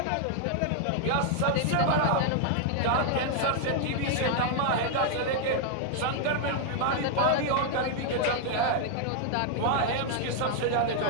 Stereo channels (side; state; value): both; different; correlation 0.00